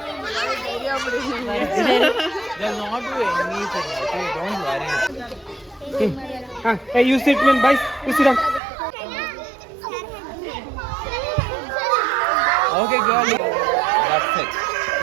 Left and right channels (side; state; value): left; drops out; at 8.6 s